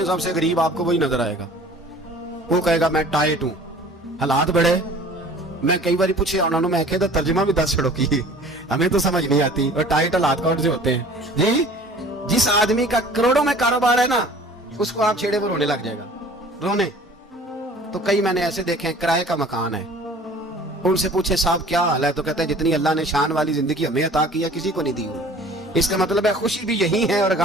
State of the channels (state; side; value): normal; both; correlation 0.48